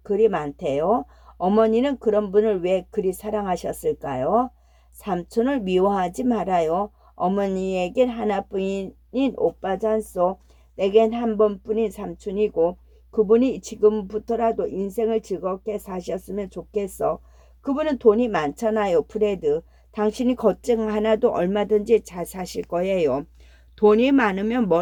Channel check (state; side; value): identical; both; correlation 1.00